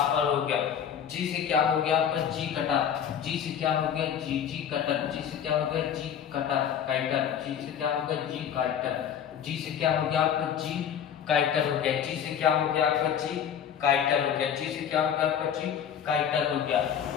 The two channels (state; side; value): quieter; right; 8.6 dB